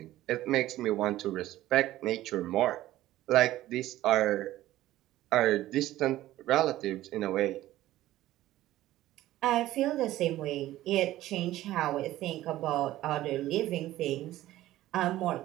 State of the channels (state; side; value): quieter; left; 15.1 dB